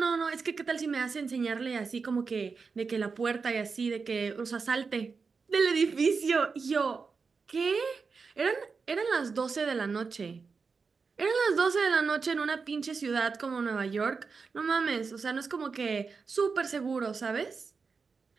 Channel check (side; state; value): left; quieter; 5.0 dB